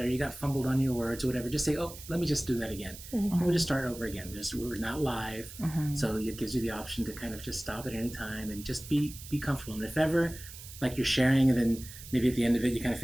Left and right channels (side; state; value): right; noise; hiss, 14 dB below the sound